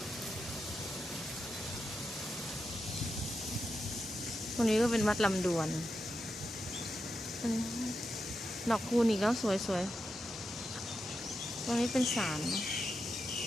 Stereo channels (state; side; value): normal; both; correlation 0.87